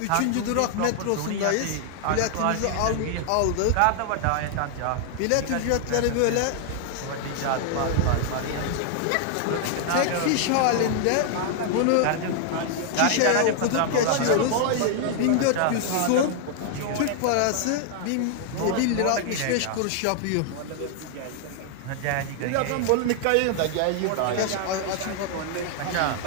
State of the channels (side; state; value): both; different; correlation 0.00